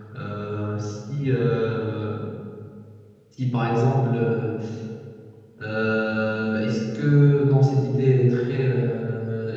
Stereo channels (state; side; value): identical; both; correlation 1.00